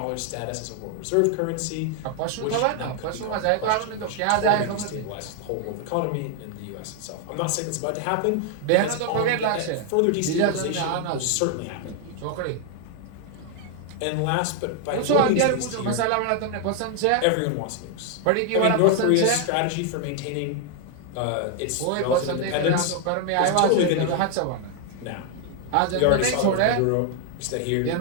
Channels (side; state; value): both; different; correlation 0.00